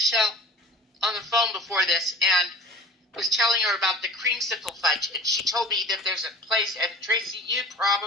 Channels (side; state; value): both; normal; correlation 0.41